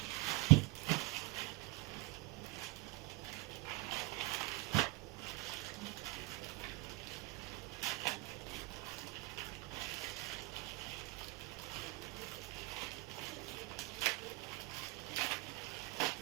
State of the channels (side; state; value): left; quieter; 25.1 dB